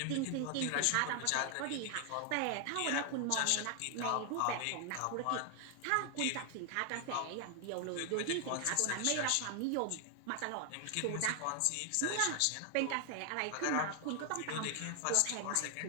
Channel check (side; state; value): both; different; correlation 0.00